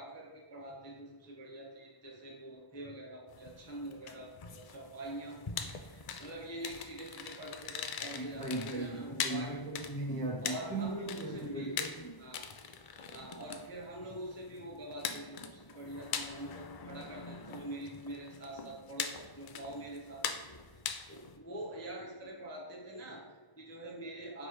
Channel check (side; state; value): right; late; 1.0 ms